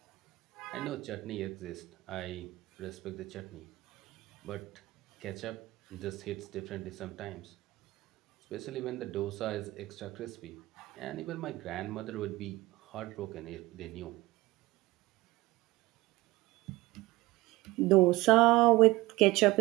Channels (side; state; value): left; quieter; 19.7 dB